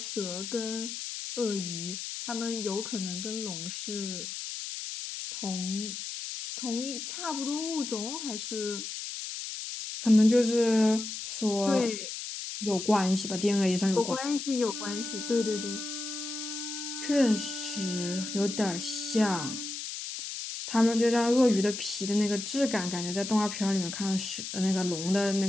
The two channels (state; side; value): noise; left; hiss, 7 dB below the sound